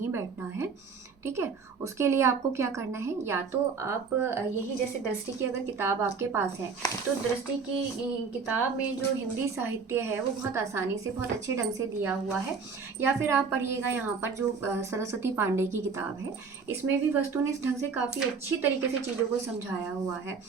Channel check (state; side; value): quieter; left; 5.2 dB